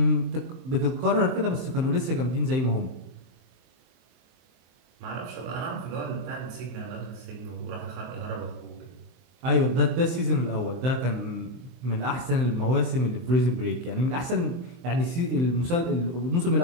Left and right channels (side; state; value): left; late; 23 ms